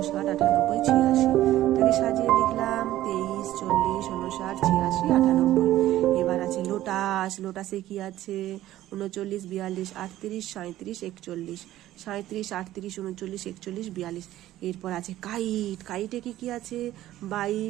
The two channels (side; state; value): left; quieter; 14.3 dB